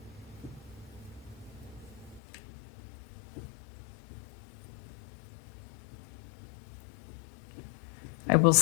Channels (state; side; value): drops out; right; at 2.2 s